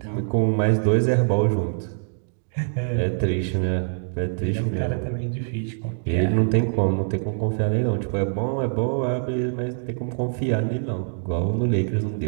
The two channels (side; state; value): left; silent; digital silence